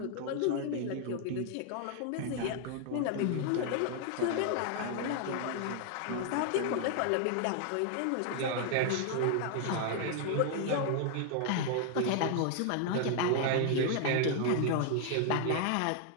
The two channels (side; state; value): both; different; correlation 0.00